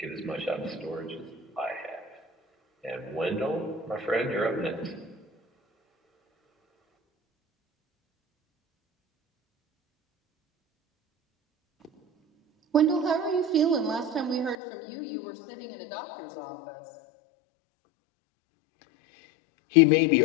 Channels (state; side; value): drops out; right; at 14.6 s